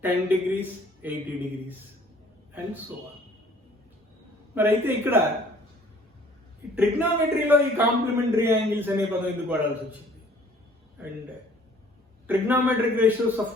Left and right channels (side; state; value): both; normal; correlation 0.56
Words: 10 degrees, 80 degrees. And so on. మరి అయితే ఇక్కడ ట్రిగ్నామెట్రీలో ఈ complementary angles అనే పదం ఎందుకు వాడాల్సి వచ్చింది and trigonometric ratios of